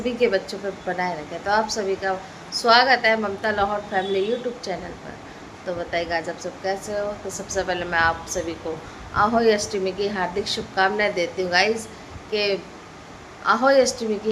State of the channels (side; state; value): both; identical; correlation 1.00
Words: के बच्चों पे बनाए रखे। तो आप सभी का स्वागत है ममता लाहौर फैमिली यूट्यूब चैनल पर। तो बताइएगा आज आप सब कैसे हो। तो सबसे पहले मैं आप सभी को आहोई अष्टमी की हार्दिक शुभकामनाएं देती हूँ गाइज के आहोई अष्टमी